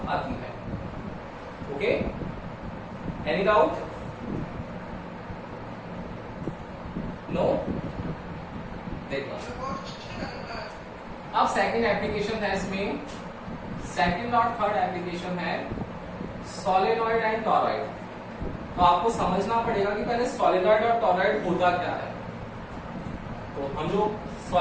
आती है। Okay, any doubt, no? देखो अब सेकंड एप्लीकेशन है इसमें, सेकंड और थर्ड एप्लीकेशन है सोलेनॉइड एंड टॉरॉइड। तो आपको समझना पड़ेगा कि पहले सोलेनॉइड और टॉरॉइड होता क्या है। तो हम लोग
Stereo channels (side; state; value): both; identical; correlation 1.00